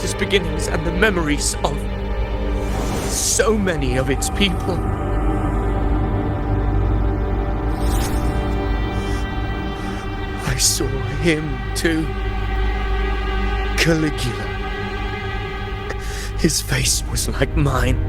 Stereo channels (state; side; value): identical; both; correlation 1.00